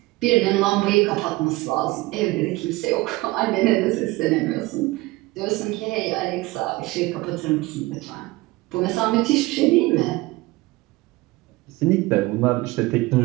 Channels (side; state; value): left; quieter; 20.8 dB